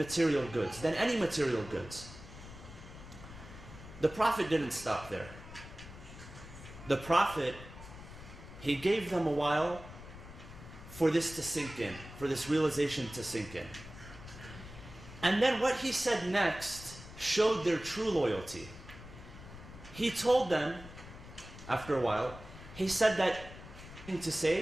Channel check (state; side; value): noise; left; rumble, 15 dB below the sound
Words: goods, than any material goods. The Prophet didn't stop there. The Prophet, he gave them a while for this to sink in, for this realization to sink in. And then what he said next showed their true loyalty. He told them after a while, he said that, "Anything to